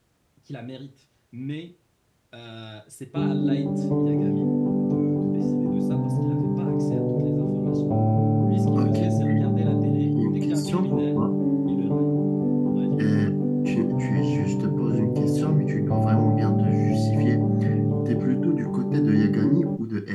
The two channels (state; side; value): identical; both; correlation 1.00